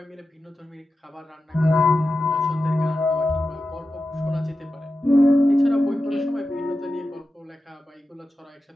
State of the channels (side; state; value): both; normal; correlation 0.92